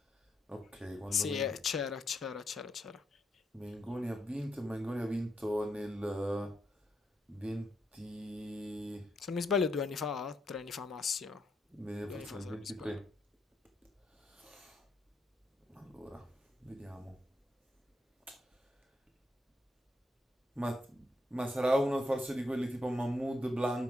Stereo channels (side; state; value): both; normal; correlation 0.79